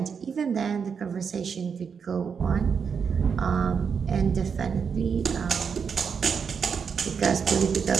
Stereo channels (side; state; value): left; quieter; 6.3 dB